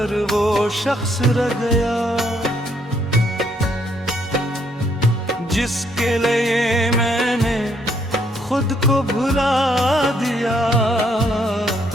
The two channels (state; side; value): normal; both; correlation 0.70